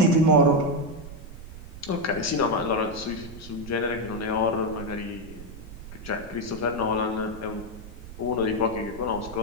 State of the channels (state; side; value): noise; right; rumble, 14 dB below the sound